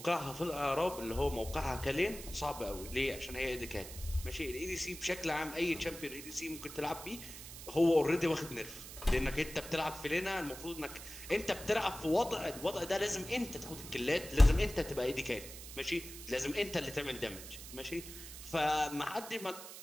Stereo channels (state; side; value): noise; right; hiss, 12 dB below the sound